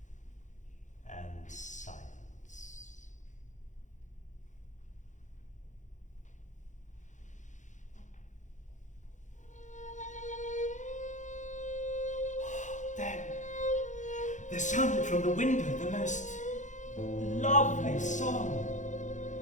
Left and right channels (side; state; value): right; late; 0.36 ms